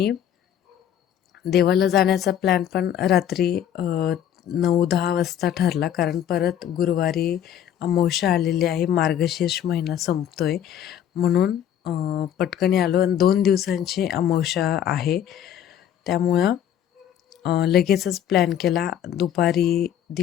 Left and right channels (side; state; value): right; quieter; 10.0 dB